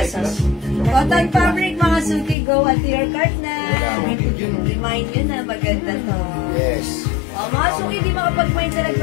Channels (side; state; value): right; drops out; at 2.4 s